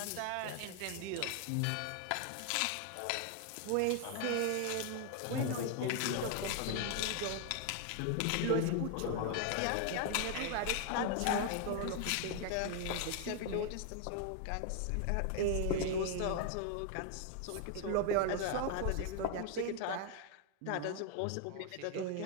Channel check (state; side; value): different; both; correlation 0.00